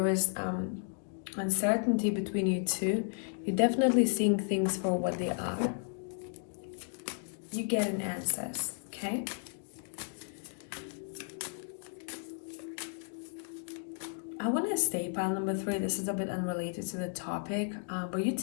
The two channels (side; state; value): right; silent; 55 dB below the other